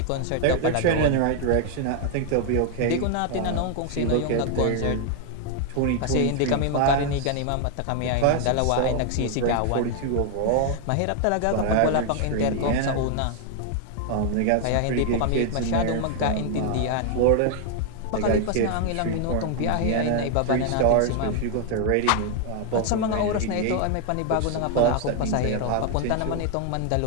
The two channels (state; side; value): different; both; correlation 0.00